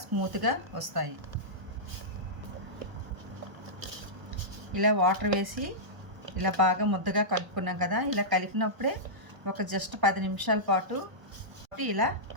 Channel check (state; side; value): late; left; 1.0 ms